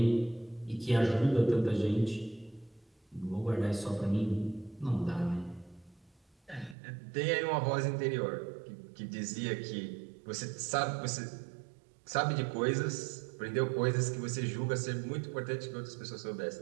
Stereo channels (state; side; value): drops out; left; at 6.8 s